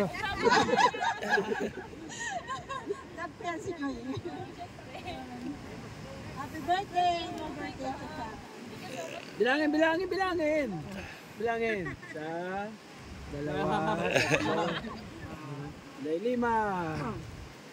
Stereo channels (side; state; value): both; identical; correlation 1.00